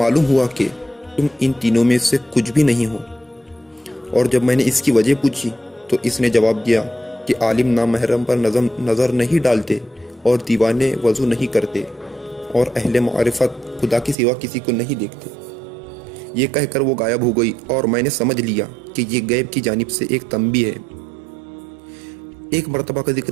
ہوا کہ تم ان تینوں میں سے کچھ بھی نہیں ہو۔ اور جب میں نے اس کی وجہ پوچھی تو اس نے جواب دیا کہ عالم نامحرم پر نظر نہیں ڈالتے اور دیوانے وضو نہیں کرتے، اور اہل معرفت خدا کے سوا کسی کو نہیں دیکھتے۔ یہ کہہ کر وہ غائب ہو گئی، اور میں نے سمجھ لیا کہ یہ غیب کی جانب سے ایک تنبیہ ہے۔ ایک مرتبہ کا ذکر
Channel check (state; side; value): drops out; left; at 14.2 s